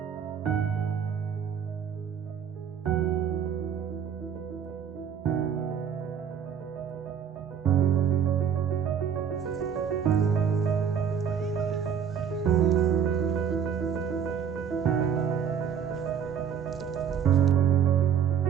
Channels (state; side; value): quieter; left; 7.9 dB